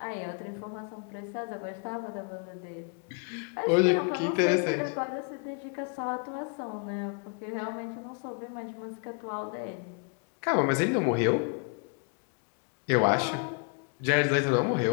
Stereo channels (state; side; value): quieter; right; 38.6 dB